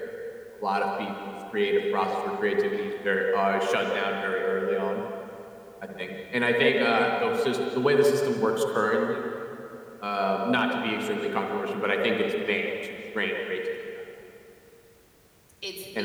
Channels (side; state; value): both; identical; correlation 1.00